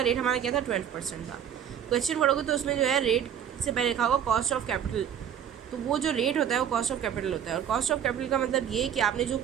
रेट हमारा क्या था 12% था। क्वेश्चन पढ़ोगे तो उसमें जो है रेट से पहले लिखा होगा कॉस्ट ऑफ कैपिटल, तो वो जो रेट होता है वो कॉस्ट ऑफ कैपिटल होता है। और कॉस्ट ऑफ कैपिटल का मतलब ये है कि आपने जो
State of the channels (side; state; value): left; quieter; 9.1 dB